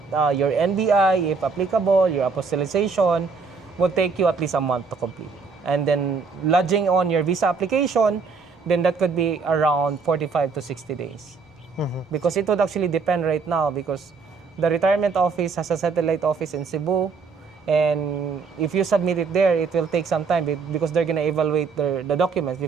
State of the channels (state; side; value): quieter; left; 4.9 dB